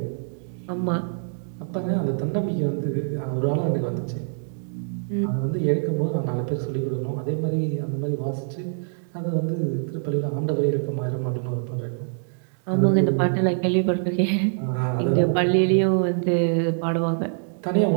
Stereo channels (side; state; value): left; silent; digital silence